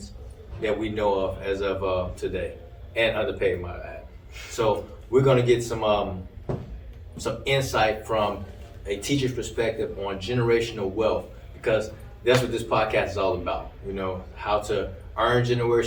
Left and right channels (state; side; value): identical; both; correlation 1.00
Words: that we know of as of today, and underpaid, might I add. So we're going to get some insight from a teacher's perspective on generational wealth, because that's what this podcast is all about. You know, how to earn